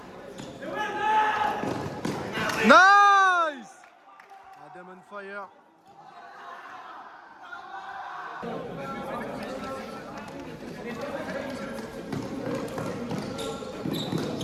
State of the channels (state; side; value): identical; both; correlation 1.00